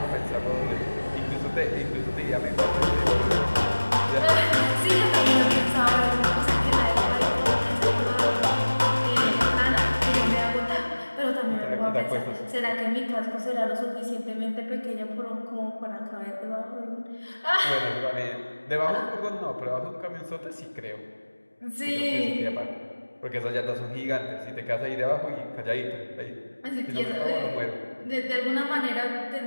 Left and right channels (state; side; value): inverted; both; correlation -1.00